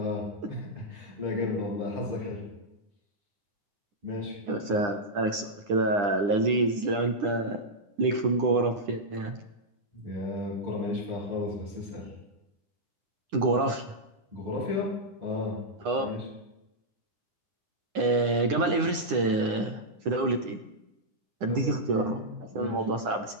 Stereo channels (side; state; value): left; late; 9.9 ms